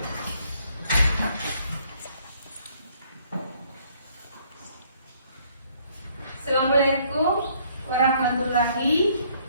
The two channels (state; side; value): inverted; both; correlation -0.64